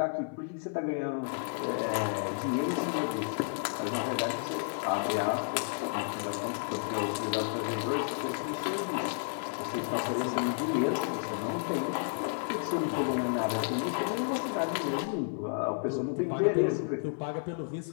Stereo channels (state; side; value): silent; right; digital silence